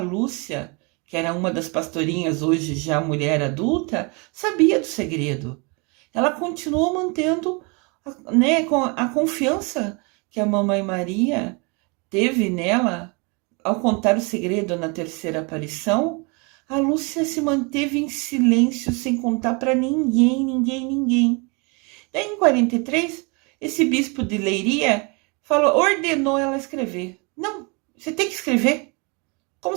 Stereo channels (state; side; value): quieter; left; 31.2 dB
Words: que era uma das pastorinhas, hoje já mulher adulta, sabia do segredo. Ela continuou mantendo, né, a confiança que a Mamãe Maria teve nela ao contar o segredo na terceira aparição. A Lúcia se manteve em silêncio, sem contar para ninguém. Daí, em 43, esse bispo de Leiria ordenou ela escrever. Não, você tem que escrever,